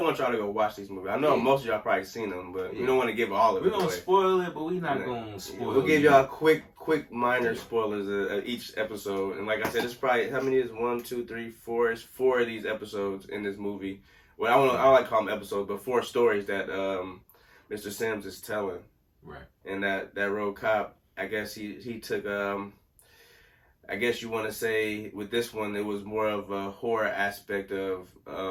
want y'all to go watch these movies. I know most of y'all probably seen them, but we don't want to give all of it away. We're gonna spoil it, but we're not gonna spoil it. We'll give y'all quick minor spoilers of each episode. And like I said, it's probably, how many is 1, 2, 3, 4? It's 4 of these episodes in this movie. Well, I don't like to call them episodes, but 4 stories that Mr. Sims is telling. Right. And that road cop, I guess he took, I guess you want to say with this one, it was more of a horror aspect of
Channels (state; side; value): identical; both; correlation 1.00